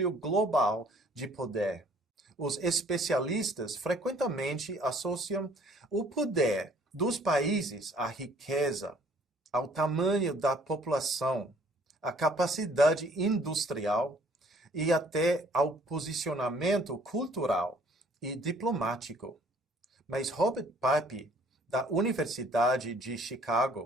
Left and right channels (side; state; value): both; normal; correlation 0.58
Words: global de poder. Os especialistas frequentemente associam o poder dos países à riqueza, ao tamanho da população, à capacidade industrial e até ao posicionamento cultural e diplomático. Mas Robert Pape, da Universidade de